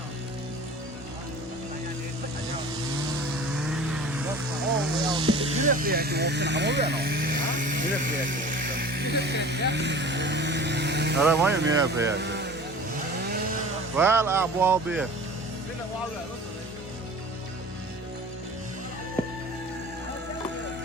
هذا ما يمين فيها ولا أبواب بيه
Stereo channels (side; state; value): both; normal; correlation 0.41